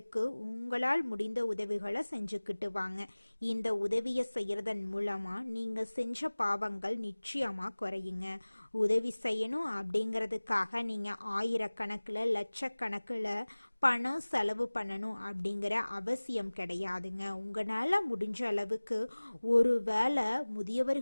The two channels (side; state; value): both; inverted; correlation -1.00